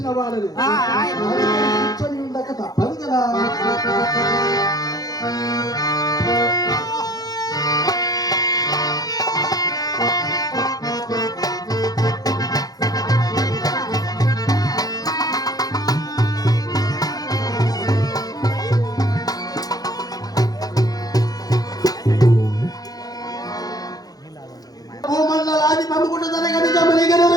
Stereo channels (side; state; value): right; late; 0.18 ms